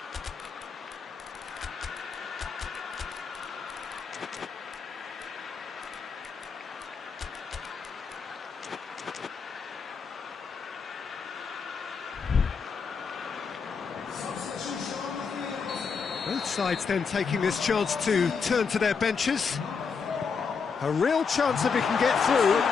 Both sides then taking this chance to turn to their benches. A real chance if he can get through.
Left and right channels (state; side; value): quieter; right; 5.6 dB